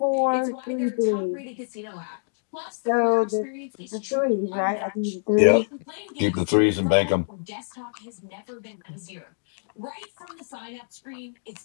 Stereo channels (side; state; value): right; silent; digital silence